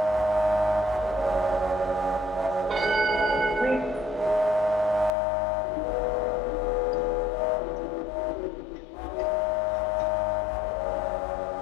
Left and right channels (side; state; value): right; drops out; at 5.1 s